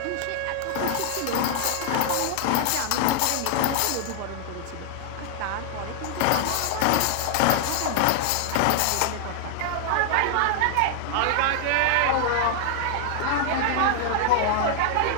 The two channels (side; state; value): both; different; correlation 0.00